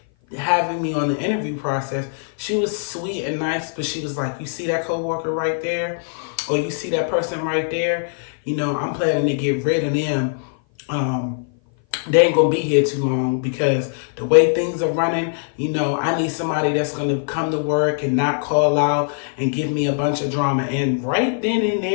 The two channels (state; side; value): silent; right; 57 dB below the other